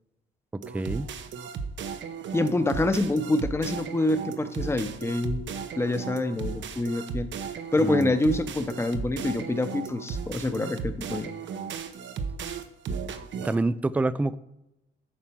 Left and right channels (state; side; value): normal; both; correlation 0.77